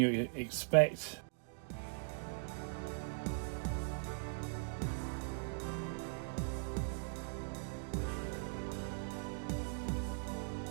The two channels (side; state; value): left; silent; digital silence